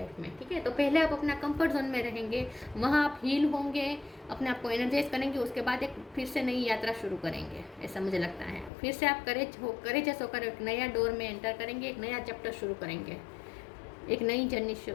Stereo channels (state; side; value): drops out; right; at 8.7 s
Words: में, ठीक है। तो पहले आप अपना कंफर्ट जोन में रहेंगे, वहाँ आप हील होंगे, अपने आप को एनर्जाइज करेंगे, उसके बाद एक फिर से नई यात्रा शुरू करेंगे, ऐसा मुझे लगता है। फिर से आप करेजियस होकर एक नया डोर में एंटर करेंगे, एक नया चैप्टर शुरू करेंगे, एक नई जर्नी